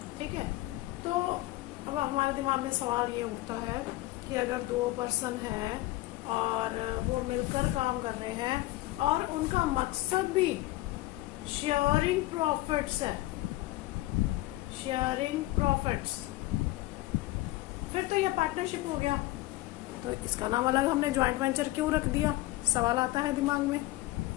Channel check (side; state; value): right; quieter; 17.8 dB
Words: ठीक है, तो अब हमारे दिमाग में सवाल ये उठता है कि अगर 2 पर्सन है और वो मिलकर काम कर रहे हैं और उनका मकसद भी शेयरिंग प्रॉफिट्स है, शेयरिंग प्रॉफिट्स, फिर तो ये पार्टनरशिप हो गया। तो इसका नाम अलग हमने ज्वाइंट वेंचर क्यों रख दिया, सवाल आता है दिमाग में।